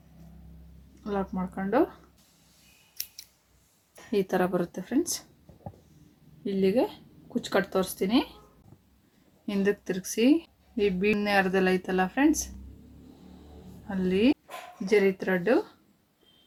ಮಾಡ್ಕೊಂಡು ಈ ಥರ ಬರುತ್ತೆ ಫ್ರೆಂಡ್ಸ್. ಇಲ್ಲಿಗೆ ಕುಚ್ಚು ಕಟ್ ತೋರಿಸ್ತೀನಿ. ಹಿಂದಕ್ಕೆ ತಿರುಗಿಸಿ ಈ ಬೀಡ್ನೆ ಅರ್ಧೆಲ್ಲ ಐತಲ್ಲ ಫ್ರೆಂಡ್ಸ್, ಅಲ್ಲಿ ಜರಿ ಥ್ರೆಡ್ಡು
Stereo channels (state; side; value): identical; both; correlation 1.00